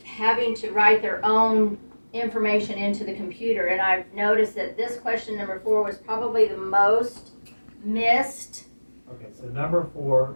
having to write their own information into the computer. And I've noticed that this question number 4 was probably the most missed. Okay, so number 4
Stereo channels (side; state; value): both; inverted; correlation -1.00